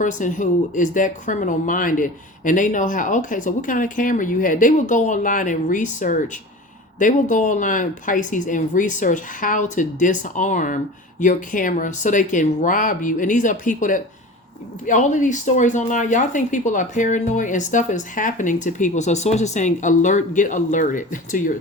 who is that criminal minded, and they know how, okay, so what kind of camera you had? They will go online and research. They will go online, Pisces, and research how to disarm your camera so they can rob you. And these are people that, all of these stories online, y'all think people are paranoid, and stuff is happening to people. So sources saying, get alerted to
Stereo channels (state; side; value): normal; both; correlation 0.35